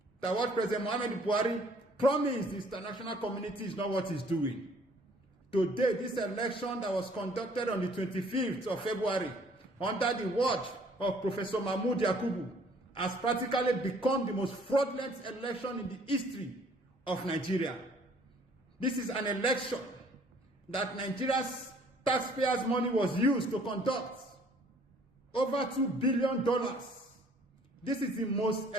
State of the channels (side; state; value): both; normal; correlation 0.58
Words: That what President Muhammad Buhari promised the international community is not what he's doing. Today, this election that was conducted on the 25th of February under the watch of Professor Mahmoud Yakubu has practically become the most fraudulent election in the history of Nigeria. This is an election that Nigeria's taxpayers' money was used to conduct. Over $2 billion. This is the most